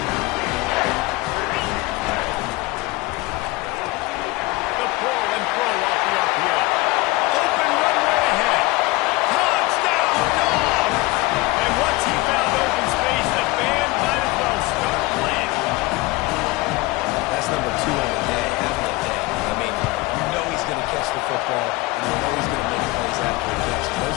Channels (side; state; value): right; quieter; 21.5 dB